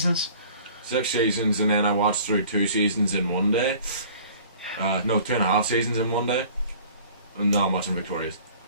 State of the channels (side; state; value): both; inverted; correlation -0.49